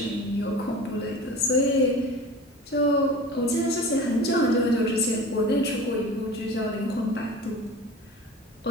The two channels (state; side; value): normal; both; correlation 0.37